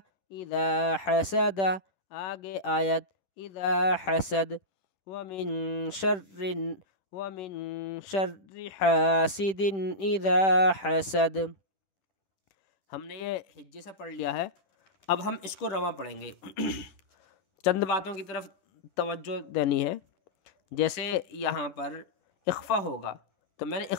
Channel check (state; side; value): late; right; 10 ms